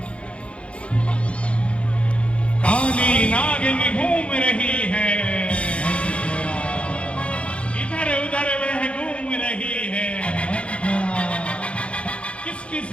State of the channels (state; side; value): late; right; 0.060 ms